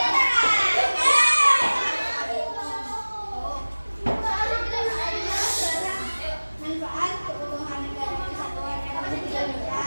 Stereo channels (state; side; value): inverted; both; correlation -1.00